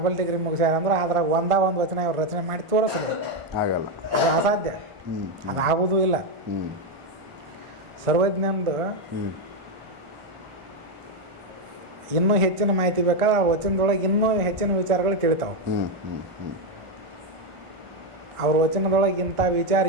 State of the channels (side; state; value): left; late; 1.4 ms